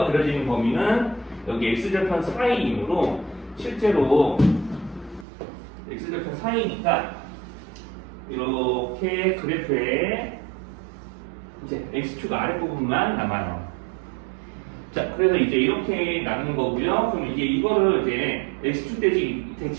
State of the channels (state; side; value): drops out; left; at 5.2 s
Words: 그려지는 범위는 여기 x절편 4이므로 실제로 x절편 4이니까 이렇게 그래프에 이제 x축 아랫부분만 남아요. 자, 그래서 이제 이렇게 나누는 거고요. 그럼 이제 이거를 이제 x축